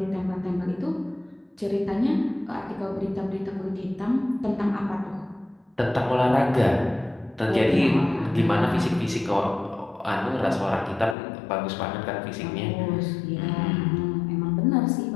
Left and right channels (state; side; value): drops out; right; at 11.2 s